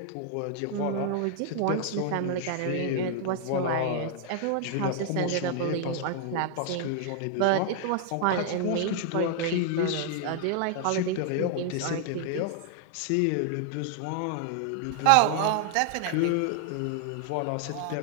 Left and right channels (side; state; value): both; different; correlation 0.00